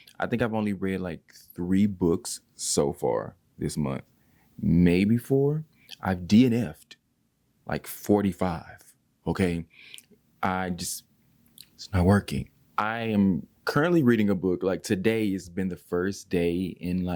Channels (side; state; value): both; identical; correlation 1.00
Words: I think I've only read like 3 books so far this month, maybe 4. I've DNF'd like 45, okay? It's not working. I am currently reading a book. Like today has been the first day in